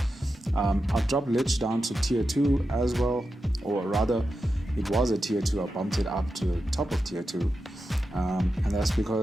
I've dropped Lich down to tier 2 as well, or rather, it was a tier 2, I bumped it up to the top of tier 2. And that's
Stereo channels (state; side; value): normal; both; correlation 0.89